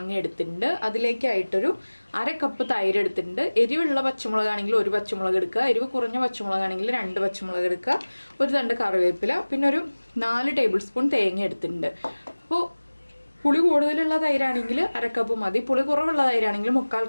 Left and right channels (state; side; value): inverted; both; correlation -1.00